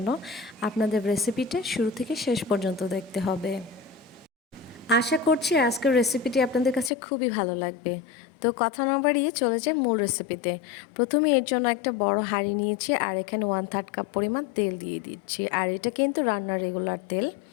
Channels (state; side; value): drops out; right; at 6.9 s